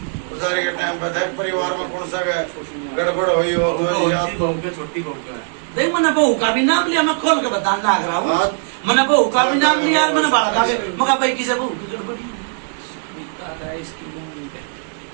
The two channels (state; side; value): silent; left; 66 dB below the other